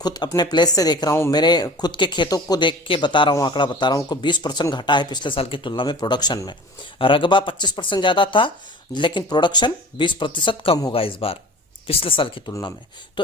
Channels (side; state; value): both; normal; correlation 0.42